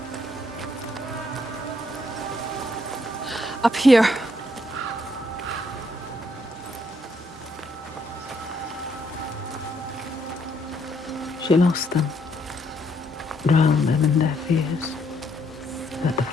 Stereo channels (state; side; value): normal; both; correlation 0.72